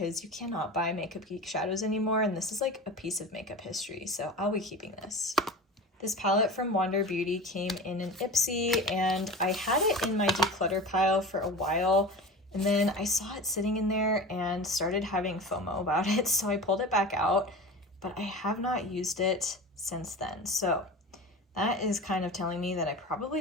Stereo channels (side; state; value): both; normal; correlation 0.33